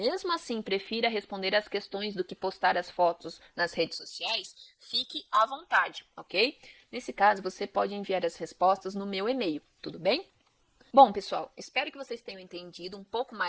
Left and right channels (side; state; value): both; identical; correlation 1.00